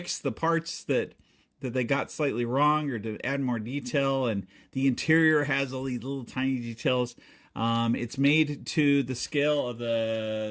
the parts that they got slightly wrong, or to add more detail. And the interior has all these little tiny details. It's made to the scale of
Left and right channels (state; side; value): identical; both; correlation 1.00